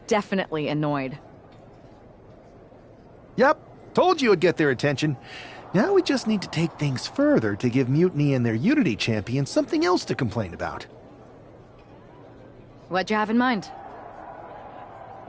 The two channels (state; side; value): identical; both; correlation 1.00